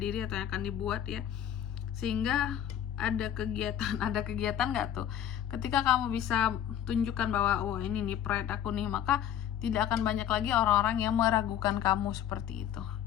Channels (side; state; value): right; quieter; 10.3 dB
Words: atau yang akan dibuat ya, sehingga ada kegiatan nggak tuh, ketika kamu bisa tunjukkan bahwa oh ini nih pride aku nih, maka tidak akan banyak lagi orang-orang yang meragukan kamu seperti itu